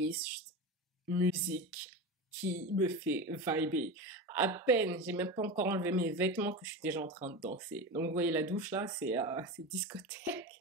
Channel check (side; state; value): both; normal; correlation 0.24